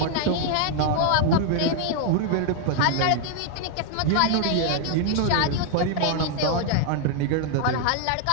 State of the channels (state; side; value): different; both; correlation 0.00